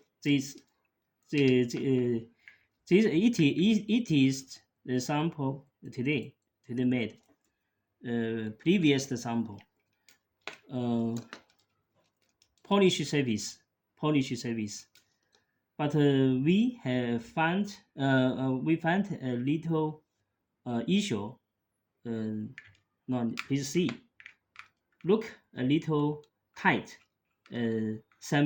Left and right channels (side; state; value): both; identical; correlation 1.00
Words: This, this it is the sample today made. Previous sample. Uh, Polish service. But we found a little issue. No, please see. Look a little tight.